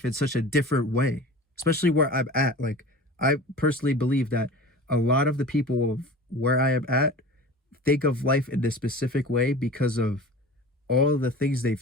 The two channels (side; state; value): both; normal; correlation 0.38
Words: in such a different way. Especially where I'm at. Like I personally believe that a lot of the people of where I am at think of life in this specific way because of all the things